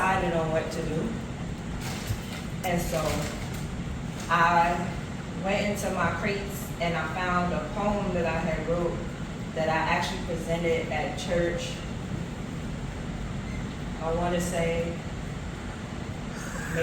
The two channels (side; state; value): both; identical; correlation 1.00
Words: on what to do. And so I went into my crates and I found a poem that I had wrote that I actually presented at church. I want to say